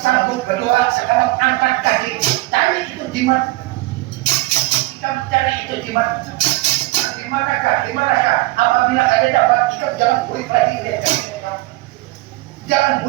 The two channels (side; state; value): left; quieter; 19.9 dB